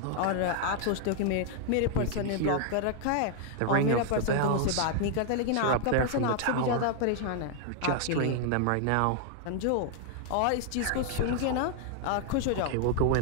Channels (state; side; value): different; both; correlation 0.00